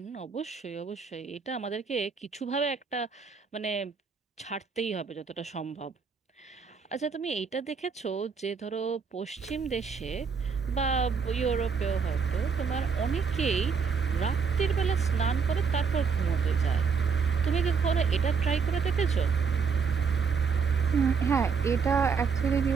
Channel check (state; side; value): quieter; left; 5.7 dB